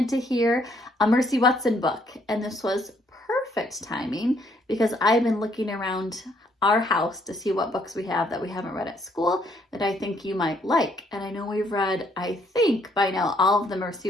to hear a Mercy Watson book, and this was perfect timing because I've been looking around our house to see what books we have that we haven't read at school that I think you might like. And I know we've read, I think by now, all of the Mercy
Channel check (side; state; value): both; normal; correlation 0.68